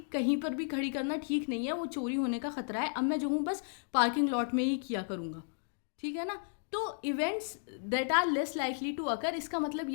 कहीं पर भी खड़ी करना ठीक नहीं है, वो चोरी होने का खतरा है, अब मैं जो हूँ बस पार्किंग लॉट में ही किया करूँगा। ठीक है ना। तो events that are less likely to occur, इसका मतलब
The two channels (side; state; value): right; silent; digital silence